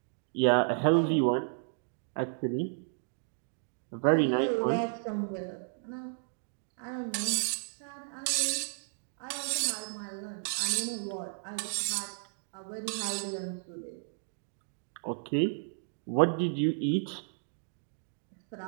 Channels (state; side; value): silent; left; digital silence